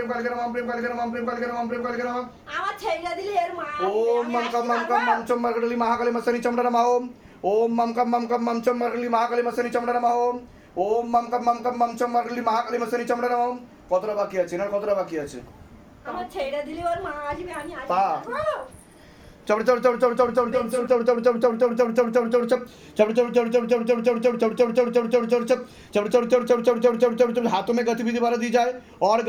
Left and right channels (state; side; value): identical; both; correlation 1.00